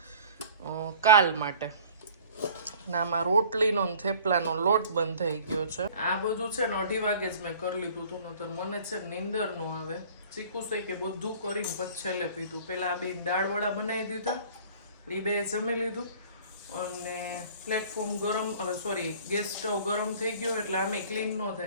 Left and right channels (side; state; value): both; inverted; correlation -0.48